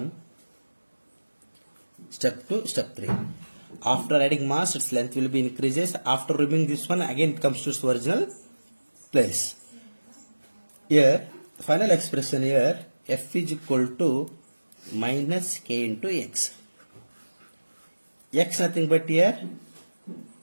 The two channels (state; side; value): inverted; both; correlation -1.00